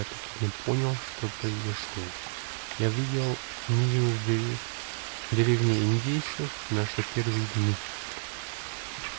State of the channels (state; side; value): silent; left; digital silence